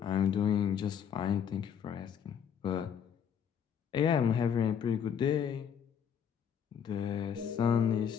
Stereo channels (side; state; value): right; quieter; 8.0 dB